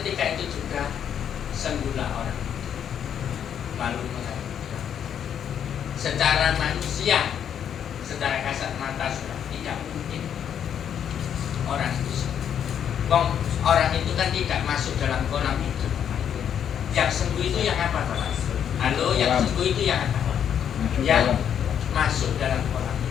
itu juga sembuhlah orang. Lalu mengatakan, secara manusia, secara kasat mata, sudah tidak mungkin orang itu sembuh. Orang itu kan tidak masuk dalam kolam hidup. Yang sembuh itu yang apa, Bapak? Halo, yang sembuh itu yang apa? Yang masuk dalam kolam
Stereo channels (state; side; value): quieter; right; 8.8 dB